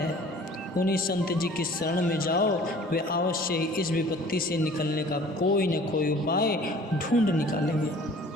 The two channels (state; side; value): normal; both; correlation 0.49